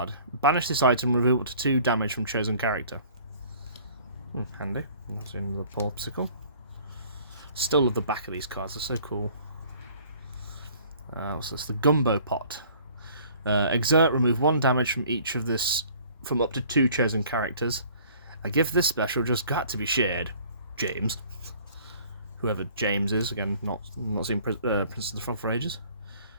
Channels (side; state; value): both; inverted; correlation -0.53